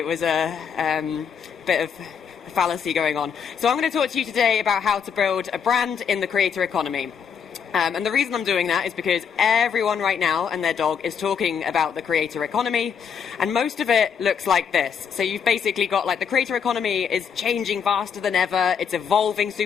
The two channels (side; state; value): right; quieter; 7.1 dB